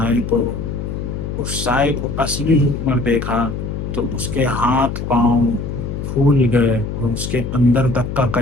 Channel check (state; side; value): noise; left; hum, 5 dB below the sound